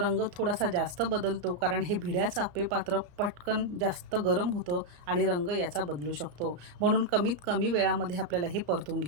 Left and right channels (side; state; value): left; late; 34 ms